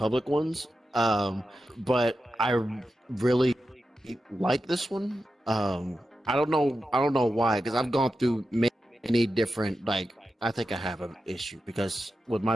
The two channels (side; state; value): both; normal; correlation 0.90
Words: ones. But I really like this one. I don't know. I don't know why. Because I've gone through many different like. I think I have an issue because with